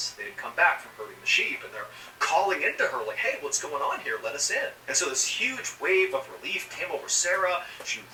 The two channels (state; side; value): identical; both; correlation 1.00